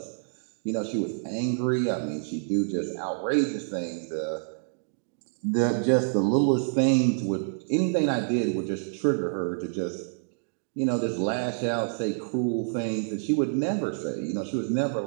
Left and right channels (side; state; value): left; silent; digital silence